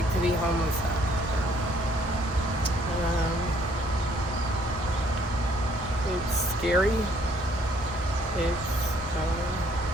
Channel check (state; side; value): normal; both; correlation 0.64